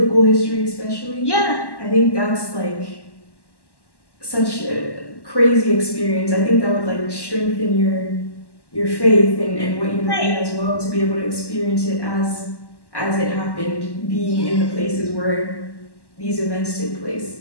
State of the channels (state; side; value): late; right; 1.1 ms